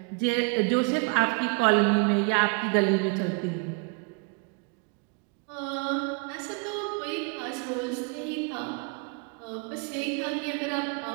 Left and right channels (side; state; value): left; quieter; 33.4 dB